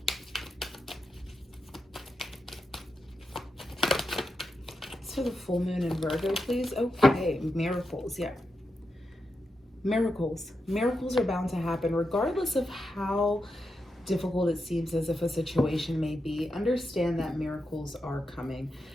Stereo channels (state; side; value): normal; both; correlation 0.87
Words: It's for the full moon in Virgo, please. Okay, miracles, yeah. Miracles. Miracles are bound to happen, regardless of how difficult it seems as if a situation may be. Understand that miracles are coming.